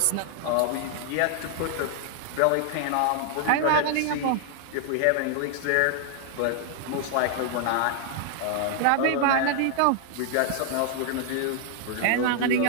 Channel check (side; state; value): both; different; correlation 0.00